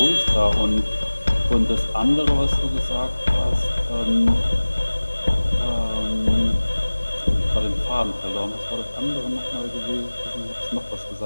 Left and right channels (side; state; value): both; inverted; correlation -1.00